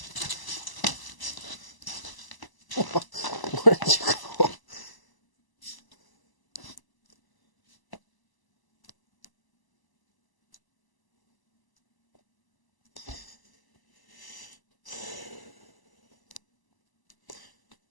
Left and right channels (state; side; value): late; right; 1.0 ms